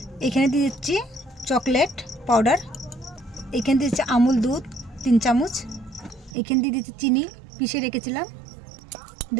এখানে দিয়ে দিচ্ছি চকলেট পাউডার, এখানে দিয়ে দিচ্ছি আমুল দুধ 3 চামচ, এখানে দিয়ে দিচ্ছি চিনি পিষে রেখেছিলাম।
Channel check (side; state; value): left; drops out; at 6.4 s